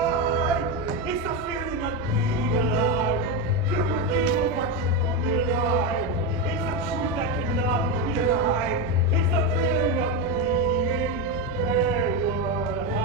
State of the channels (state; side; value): normal; both; correlation 0.12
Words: It's the feeling of being alive. Filled with evil, but truly alive. It's the truth that cannot be denied. It's the feeling of being Calvert